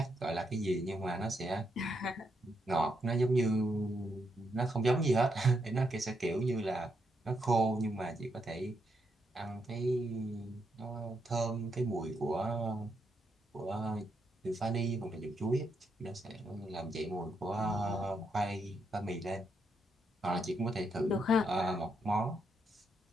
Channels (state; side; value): normal; both; correlation 0.79